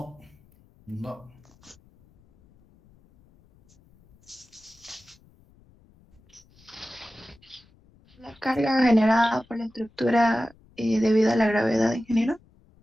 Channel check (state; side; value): noise; left; rumble, 30 dB below the sound